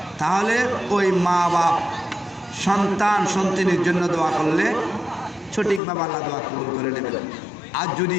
তাহলে ওই মা বাপ সন্তান সন্তানের জন্য দোয়া করলে সঠিকভাবে আল্লাহ দোয়া কবুল করে নেবেন। আর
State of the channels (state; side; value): drops out; right; at 5.8 s